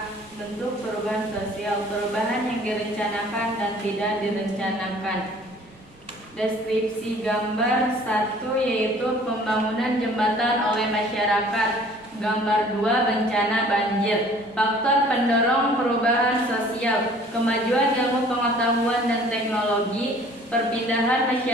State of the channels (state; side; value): noise; right; rumble, 28 dB below the sound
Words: bentuk perubahan sosial, perubahan yang direncanakan dan tidak direncanakan. Deskripsi gambar 1 yaitu pembangunan jembatan oleh masyarakat. Gambar 2 bencana banjir. Faktor pendorong perubahan sosial, kemajuan ilmu pengetahuan dan teknologi, perpindahan